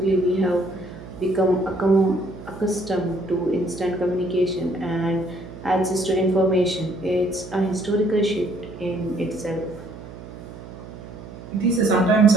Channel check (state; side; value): noise; right; hum, 14 dB below the sound